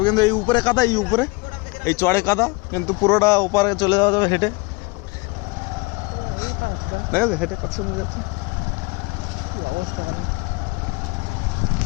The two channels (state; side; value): quieter; right; 27.1 dB